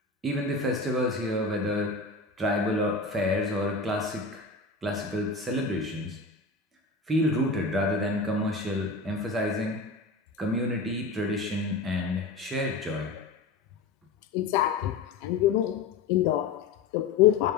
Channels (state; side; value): quieter; right; 3.9 dB